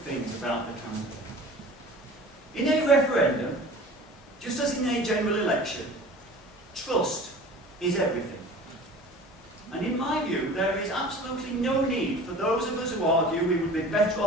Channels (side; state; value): both; normal; correlation 0.41